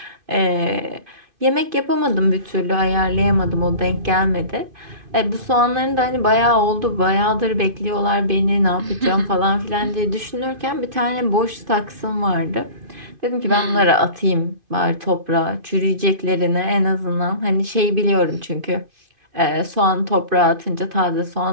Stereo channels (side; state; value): left; late; 2.5 ms